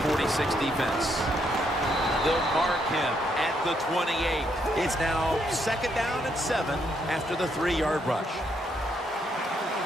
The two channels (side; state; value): both; normal; correlation 0.75